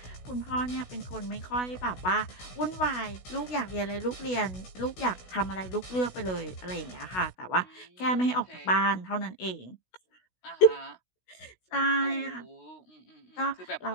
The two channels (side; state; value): right; late; 16 ms